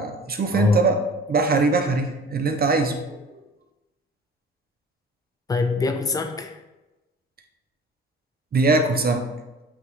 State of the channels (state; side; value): normal; both; correlation 0.44